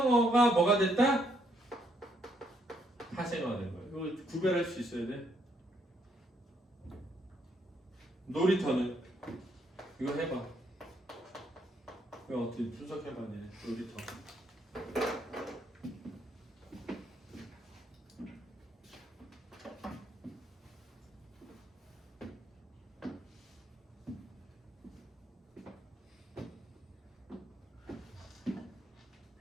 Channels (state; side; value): normal; both; correlation 0.72